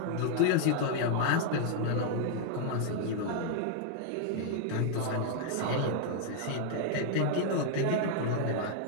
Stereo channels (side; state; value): both; different; correlation 0.00